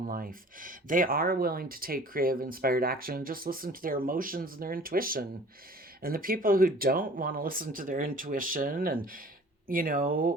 life. They are willing to take creative, inspired action and just listen to their emotions and their intuition. And the people who don't want to listen to their intuition and,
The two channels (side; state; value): both; normal; correlation 0.47